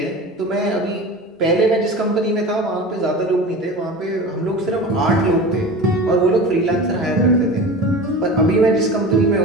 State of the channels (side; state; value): both; normal; correlation 0.33